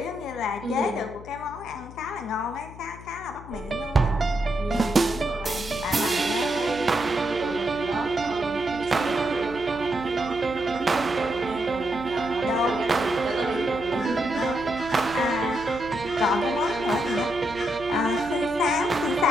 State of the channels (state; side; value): noise; left; hum, 16 dB below the sound